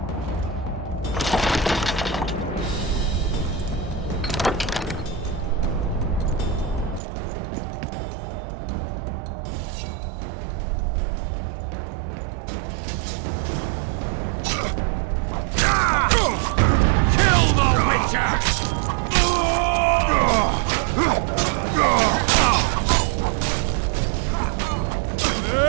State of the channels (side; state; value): left; drops out; at 7.0 s